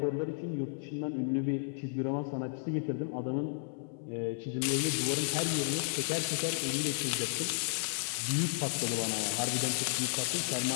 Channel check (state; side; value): silent; right; 56 dB below the other